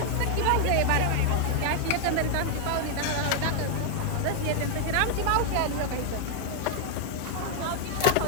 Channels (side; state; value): both; different; correlation 0.00